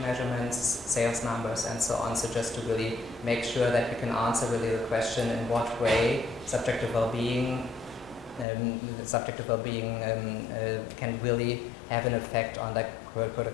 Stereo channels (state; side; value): drops out; right; at 8.5 s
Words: sales numbers, and so on. So just to really make sure that we can answer really the question in what way subjective well-being can really have an effect on like